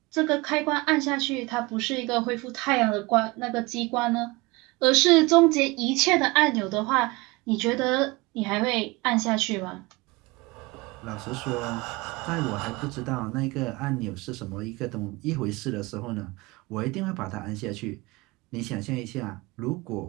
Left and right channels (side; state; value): left; quieter; 23.8 dB